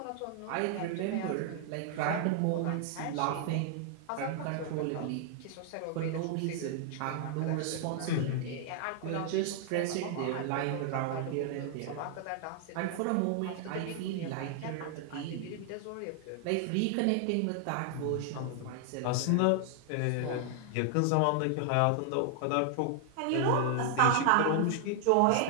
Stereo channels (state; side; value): different; both; correlation 0.00